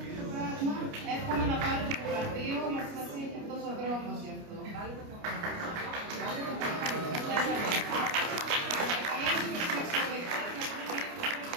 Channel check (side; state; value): left; late; 29 ms